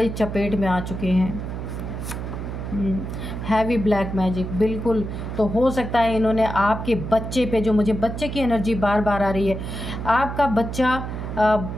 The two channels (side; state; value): right; noise; hum, 6 dB below the sound